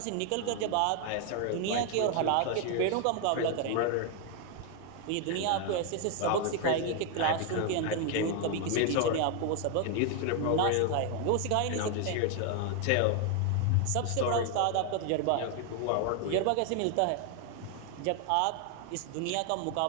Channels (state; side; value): different; both; correlation 0.00